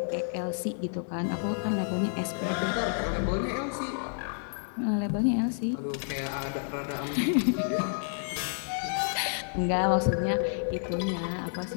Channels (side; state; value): right; silent; digital silence